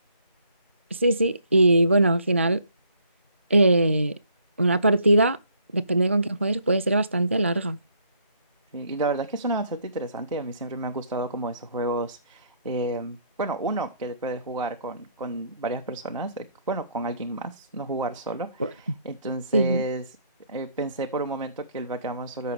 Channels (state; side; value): inverted; both; correlation -0.66